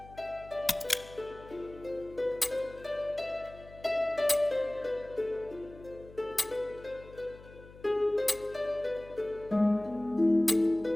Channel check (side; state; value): left; noise; hum, 20 dB below the sound